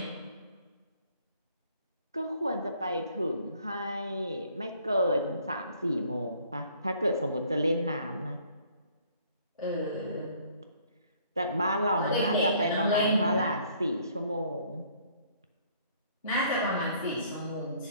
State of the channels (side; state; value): both; inverted; correlation -0.60